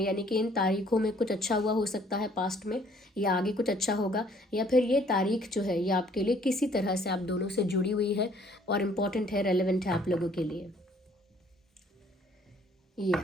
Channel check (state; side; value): normal; both; correlation 0.60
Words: यानी कि इन तारीखों में कुछ अच्छा हुआ हो सकता है पास्ट में, या आगे कुछ अच्छा होगा, या फिर ये तारीख जो है ये आपके लिए किसी तरह से आप दोनों से जुड़ी हुई है और इम्पॉर्टेंट है, रेलेवेंट है आप लोगों के लिए।